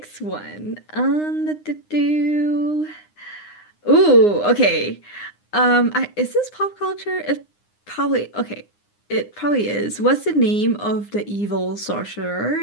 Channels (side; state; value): right; late; 9.7 ms